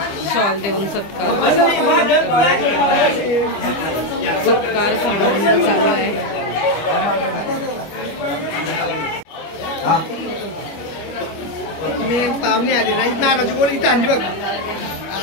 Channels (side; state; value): right; late; 25 ms